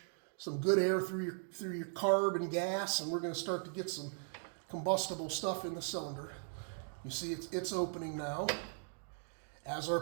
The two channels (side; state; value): left; silent; 52 dB below the other